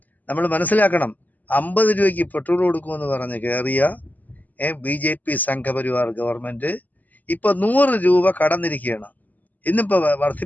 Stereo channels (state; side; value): late; right; 0.081 ms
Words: നമ്മൾ മനസ്സിലാക്കണം, 50 രൂപയ്ക്ക് പെട്രോൾ കൊടുക്കുമെന്ന് പറഞ്ഞ് കയറിയ BJP സംഘപരിവാർ ഗവൺമെൻറ് ഇപ്പോൾ 100 രൂപ കടന്നിരിക്കുകയാണ്. ഇന്നിപ്പോൾ